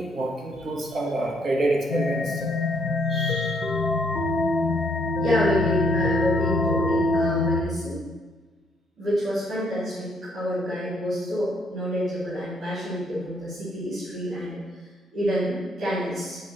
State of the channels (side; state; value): both; normal; correlation 0.69